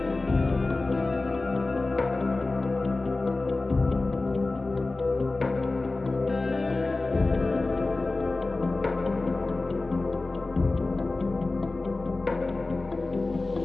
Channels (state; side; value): quieter; right; 3.3 dB